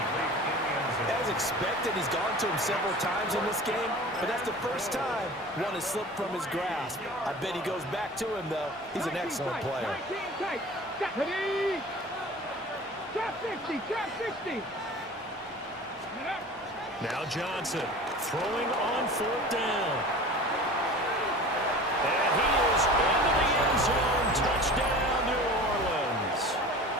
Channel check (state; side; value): normal; both; correlation 0.39